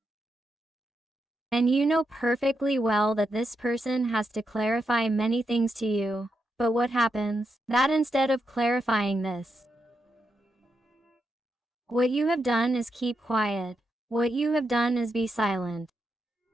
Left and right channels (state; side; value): normal; both; correlation 0.84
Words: And you know perfectly well that this person has to clarify many things to you, but what happens? That instead of clarifying this, what you have done is keep quiet. What you have done is be silent.